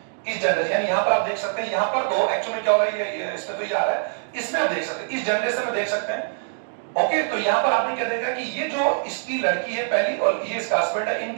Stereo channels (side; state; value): left; silent; digital silence